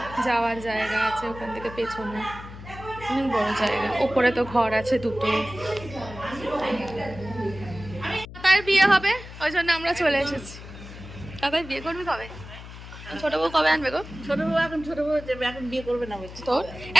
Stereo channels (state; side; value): noise; left; hum, 14 dB below the sound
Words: যাওয়ার জায়গা আছে, ওখান থেকে পেছনে অনেক বড় জায়গা। ওপরে তো ঘর আছে 2টো। তার বিয়ে হবে, ওই জন্য আমরা চলে এসেছি। তাদের বিয়ে করবি কবে? ছোট বউ কবে আনবে গো? ছোট বউ যাবে, এখন বিয়ে করবে না বলছে। তোর